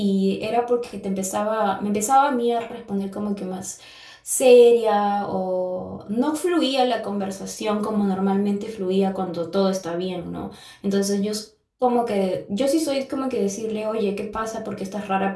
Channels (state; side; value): identical; both; correlation 1.00